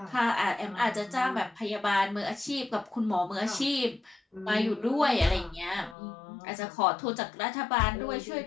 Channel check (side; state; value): right; drops out; at 6.0 s